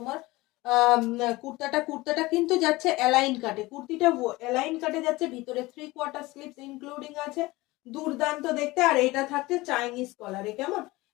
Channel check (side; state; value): right; quieter; 20.6 dB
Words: কুর্তাটা কিন্তু যাচ্ছে অ্যালাইন কাটে, কুর্তিটা অ্যালাইন কাটে যাচ্ছে, ভিতরে 3/4 স্লিভস ইনক্লুডিং আছে। দুর্দান্ত দেখতে। আর এটা থাকছে চাইনিজ কলারে, কেমন